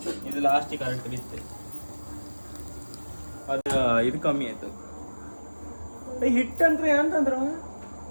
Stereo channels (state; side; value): inverted; both; correlation -1.00